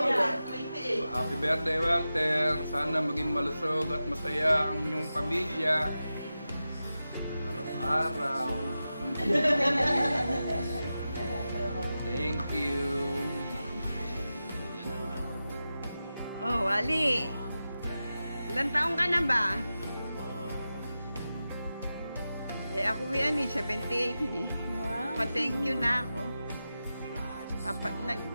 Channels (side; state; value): both; inverted; correlation -0.92